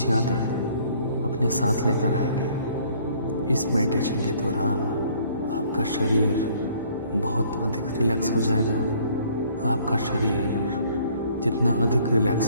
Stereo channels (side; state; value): both; inverted; correlation -0.59